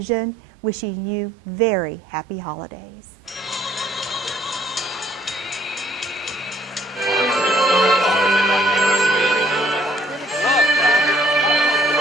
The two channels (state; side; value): normal; both; correlation 0.63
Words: wishing you very happy holidays.